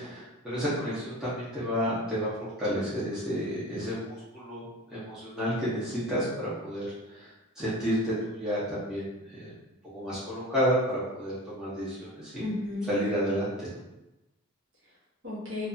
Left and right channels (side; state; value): both; normal; correlation 0.35